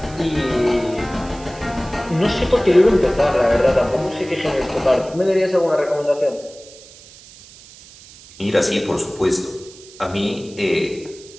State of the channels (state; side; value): noise; right; hiss, 21 dB below the sound